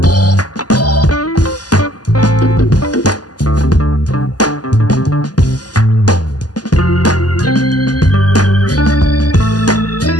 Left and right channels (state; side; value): late; right; 0.69 ms